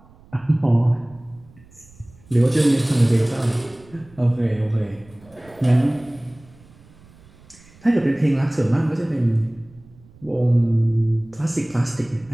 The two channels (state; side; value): noise; right; rumble, 26 dB below the sound